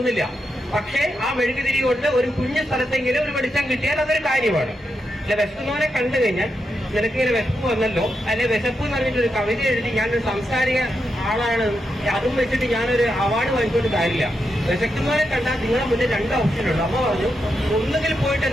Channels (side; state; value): both; normal; correlation 0.85